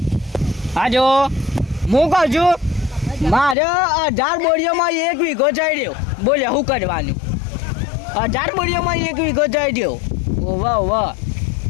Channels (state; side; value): drops out; right; at 3.6 s